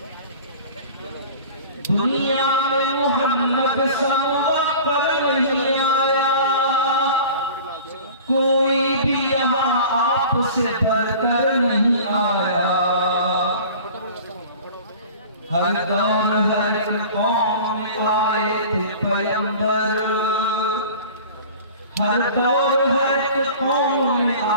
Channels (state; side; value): inverted; both; correlation -0.41